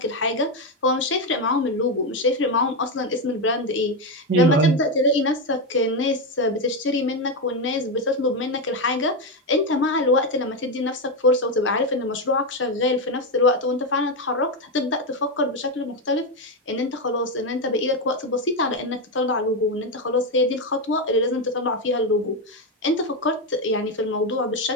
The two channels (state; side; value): normal; both; correlation 0.09